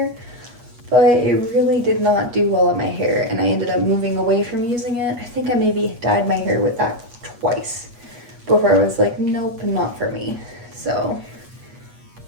but it really did not do well in my hair, and I ended up moving away from using it. I think I maybe dyed my hair with that twice before I was like, nope, not for me. So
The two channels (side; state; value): left; late; 8.4 ms